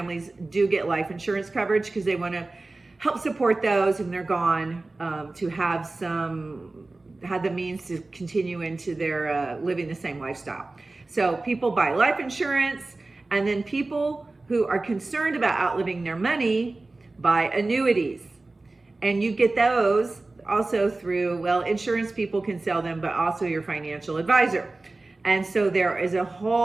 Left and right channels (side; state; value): left; quieter; 3.2 dB